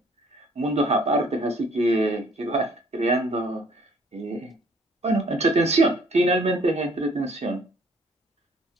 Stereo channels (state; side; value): normal; both; correlation 0.59